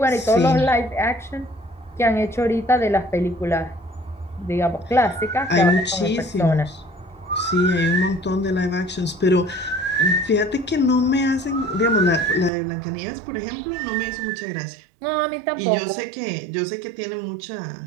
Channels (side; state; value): left; drops out; at 12.5 s